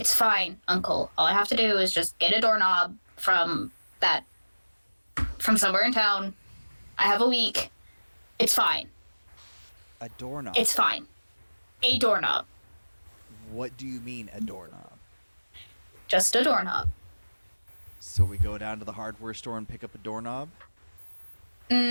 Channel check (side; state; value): both; inverted; correlation -1.00